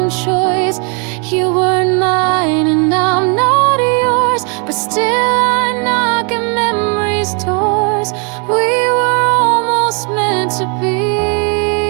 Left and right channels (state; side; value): quieter; left; 36.9 dB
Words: choice. You weren't mine and I'm not yours, but still I knock at memory's doors. We were almost meant to be,